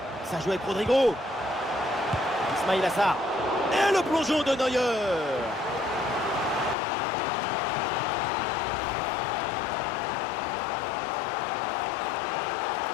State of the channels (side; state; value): right; drops out; at 6.8 s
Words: Ça joue avec Rodrigo. Ismail Assar. Et le plongeon de Neuer.